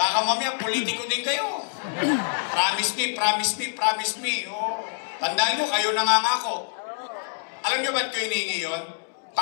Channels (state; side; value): silent; right; digital silence